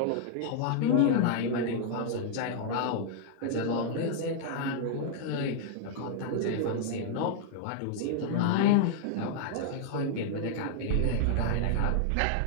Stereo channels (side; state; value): both; different; correlation -0.01